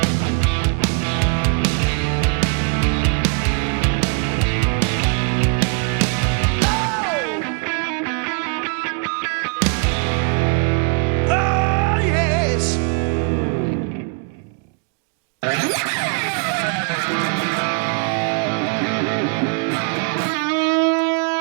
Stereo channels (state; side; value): quieter; left; 37.8 dB